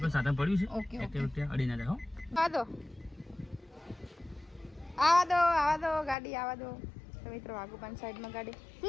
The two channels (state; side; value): drops out; right; at 6.2 s